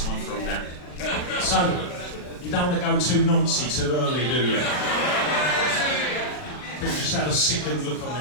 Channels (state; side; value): late; right; 40 ms